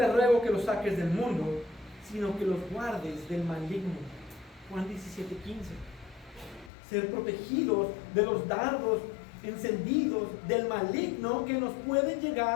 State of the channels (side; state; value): right; drops out; at 6.7 s